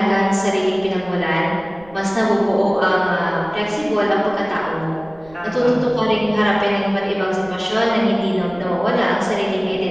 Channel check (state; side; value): noise; right; rumble, 24 dB below the sound